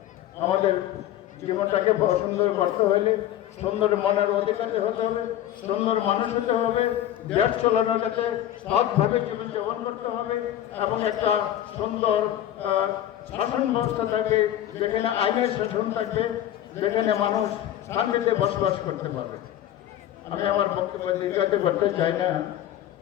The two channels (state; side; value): quieter; right; 12.0 dB